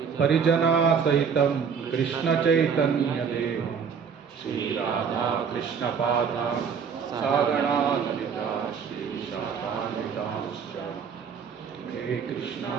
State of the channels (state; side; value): quieter; left; 6.6 dB